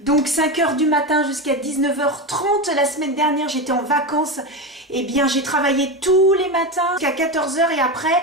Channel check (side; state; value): both; normal; correlation 0.17